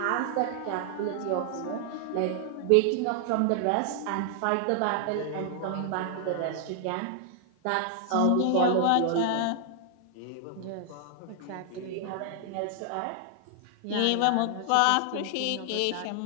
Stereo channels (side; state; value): both; different; correlation 0.00